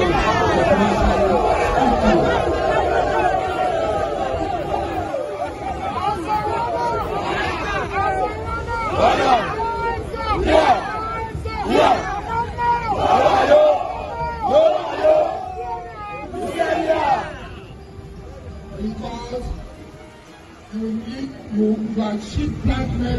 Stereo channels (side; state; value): both; identical; correlation 1.00